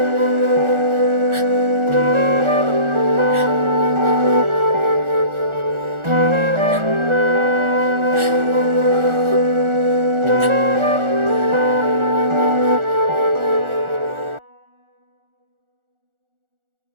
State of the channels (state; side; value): late; left; 1.4 ms